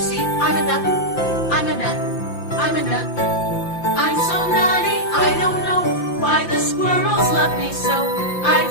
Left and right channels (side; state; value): right; late; 5.8 ms